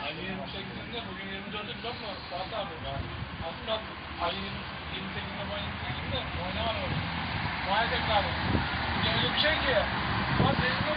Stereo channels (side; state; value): both; identical; correlation 1.00